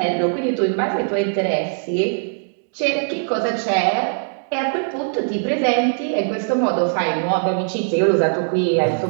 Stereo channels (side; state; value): left; silent; digital silence